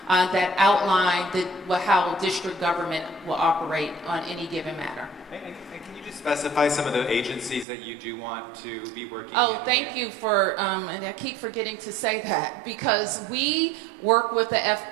that outline how district government will operate on any given matter. And can you just specify some of the agencies that you do want to be working Oh, thank you for, and I keep forgetting to say that, because we work with the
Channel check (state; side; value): drops out; left; at 7.7 s